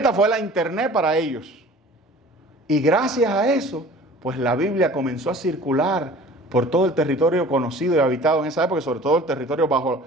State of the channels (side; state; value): both; normal; correlation 0.45